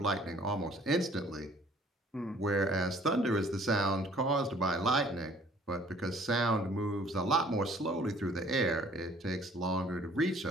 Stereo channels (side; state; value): both; normal; correlation 0.56